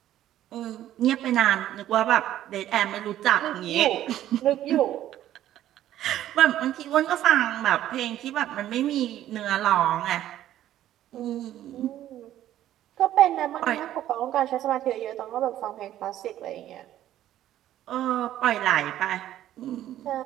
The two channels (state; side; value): quieter; left; 12.6 dB